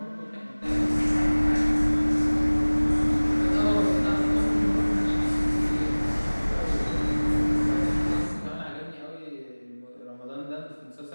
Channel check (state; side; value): inverted; both; correlation -1.00